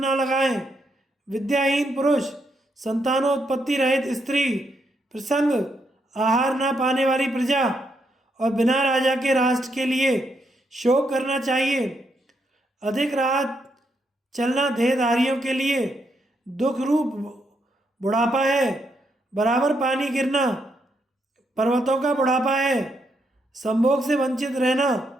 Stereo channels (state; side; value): normal; both; correlation 0.78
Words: लगाएं। विद्याहीन पुरुष, संतानोत्पत्ति रहित स्त्री, प्रसंग आहार ना पाने वाली प्रजा और बिना राजा के राष्ट्र के लिए शोक करना चाहिए। अधिक रात चलना देहधारियों के लिए दुख रूप बुढ़ापा है। बराबर पानी गिरना पर्वतों का बुढ़ापा है। संभोग से वंचित रहना